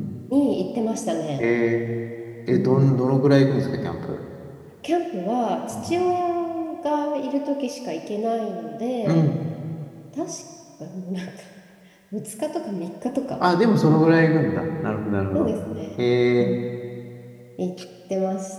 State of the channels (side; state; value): both; identical; correlation 1.00